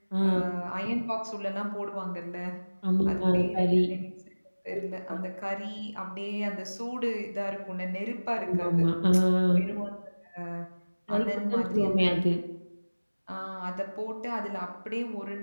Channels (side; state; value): both; inverted; correlation -1.00